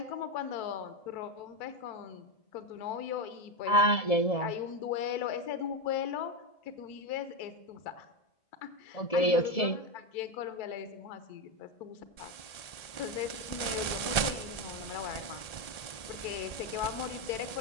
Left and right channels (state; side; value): late; right; 1.3 ms